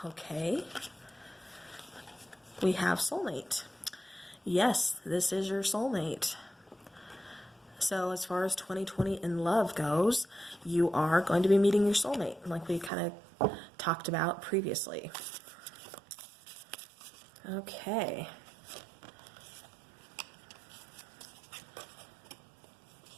okay, we have soulmate. Yes, this is your soulmate. So as far as 2020 in love goes, you are going to be meeting your soulmate, like we kind of talked about previously. Okay.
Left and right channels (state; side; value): drops out; left; at 12.9 s